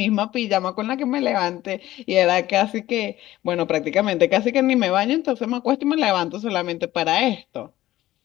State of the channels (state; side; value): quieter; right; 15.3 dB